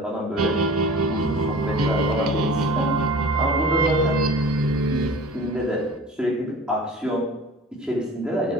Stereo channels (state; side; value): normal; both; correlation 0.41